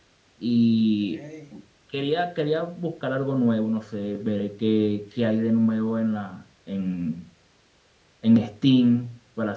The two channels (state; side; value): identical; both; correlation 1.00